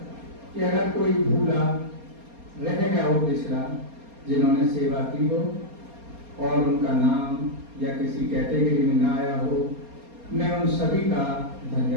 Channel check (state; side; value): late; left; 4.3 ms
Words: कि अगर कोई भूला रह गया हो पिछला, जिन्होंने सेवा की हो और उनका नाम या किसी कैटेगरी में ना आया हो, मैं उन सभी का